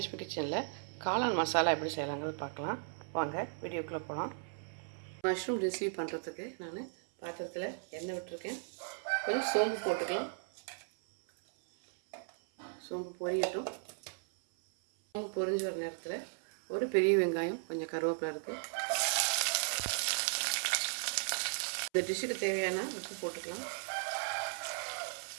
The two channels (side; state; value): left; silent; 54 dB below the other